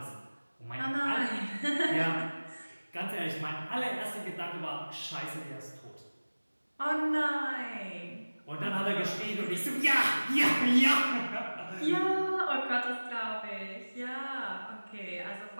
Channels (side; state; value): both; inverted; correlation -1.00